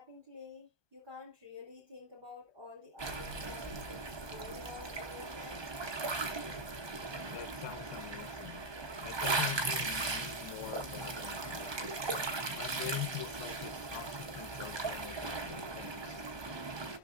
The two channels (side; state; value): left; late; 1.2 ms